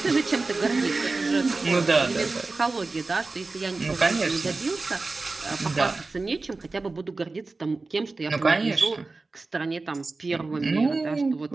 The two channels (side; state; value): left; quieter; 3.6 dB